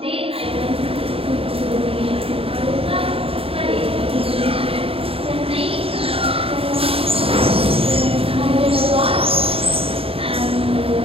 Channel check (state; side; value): late; left; 0.27 ms